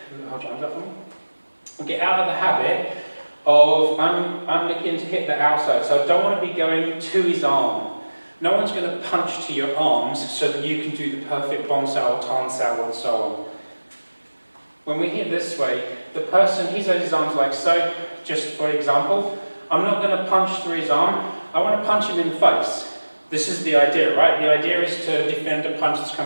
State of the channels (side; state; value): both; inverted; correlation -1.00